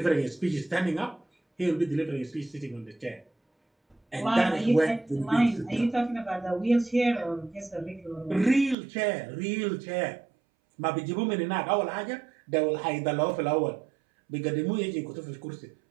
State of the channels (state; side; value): drops out; left; at 8.8 s